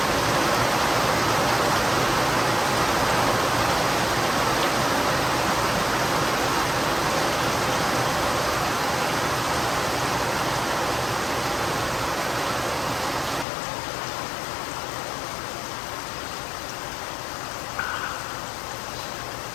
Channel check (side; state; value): right; drops out; at 13.5 s